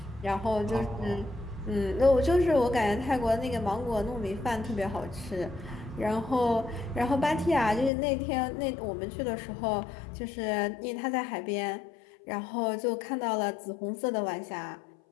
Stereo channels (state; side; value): drops out; right; at 7.9 s